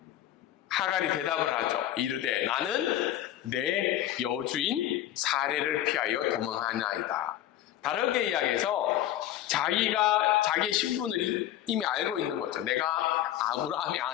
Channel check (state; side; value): quieter; right; 12.6 dB